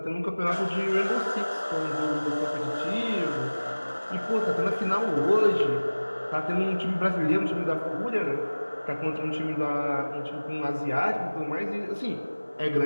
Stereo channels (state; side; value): inverted; both; correlation -1.00